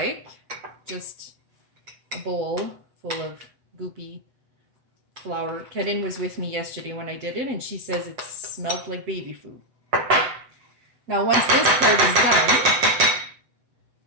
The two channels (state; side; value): late; left; 8.0 ms